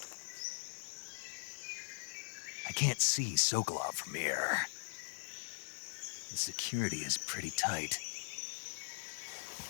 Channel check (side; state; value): right; silent; 51 dB below the other